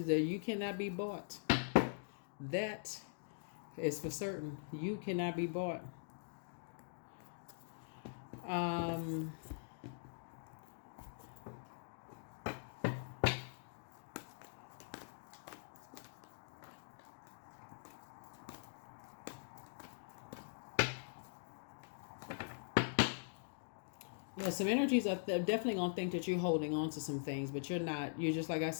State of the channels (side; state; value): right; silent; digital silence